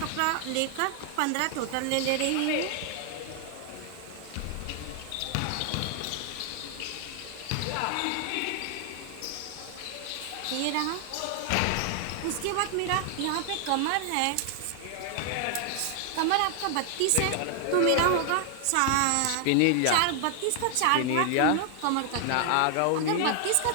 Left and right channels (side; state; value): both; different; correlation 0.00